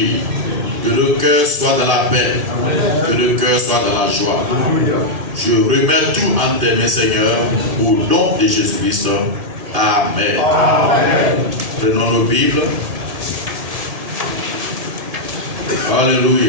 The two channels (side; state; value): left; late; 1.7 ms